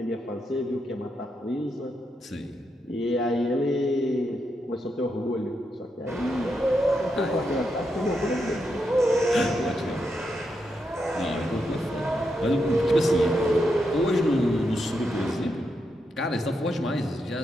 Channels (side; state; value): both; normal; correlation 0.83